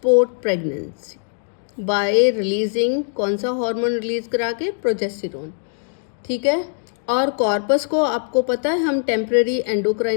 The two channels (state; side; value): silent; right; digital silence